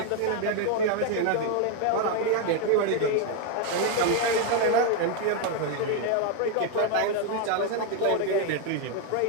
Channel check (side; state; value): both; different; correlation 0.01